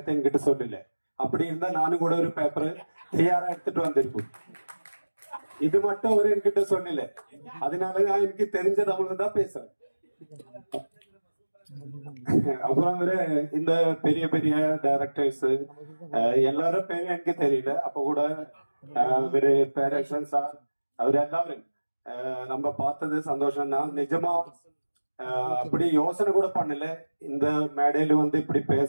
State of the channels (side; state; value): both; inverted; correlation -1.00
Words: என்கிட்ட சொல்லல. அப்படி இருந்தா நானும் கூட ஒரு பேப்பர் தயாரா எடுத்துட்டு வந்திருக்கும். இது மட்டும் அவரு என்கிட்ட சொல்லல. அதனால நான் எனக்கு தெரிஞ்ச தமிழ் தான் பேசுறேன். அப்புறம் இந்த பெரிய பெரிய டைரக்டர்ஸ் எல்லாரும் பேரும் எனக்கு தெரியல. அப்ப கூட பேரக்ஷன் சார் அவர் எல்லாரும் நம்ம பார்த்தது சந்தோஷம் தான். நிஜமா அப்படி யோசனை கூட பண்ணல இந்த மேடையில இப்படி